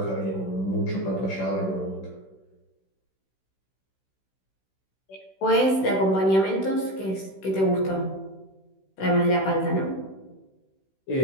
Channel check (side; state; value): right; late; 16 ms